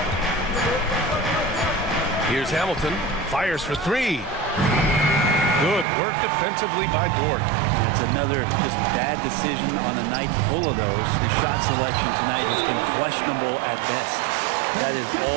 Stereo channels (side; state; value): left; drops out; at 5.9 s